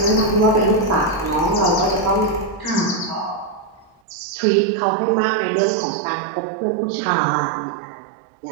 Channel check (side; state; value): left; drops out; at 4.0 s